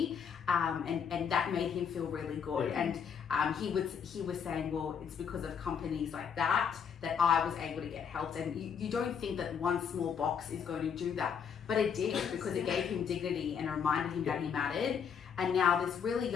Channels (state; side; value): quieter; right; 7.1 dB